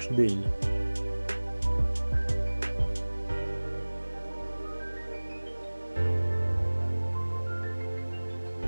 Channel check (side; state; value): both; inverted; correlation -1.00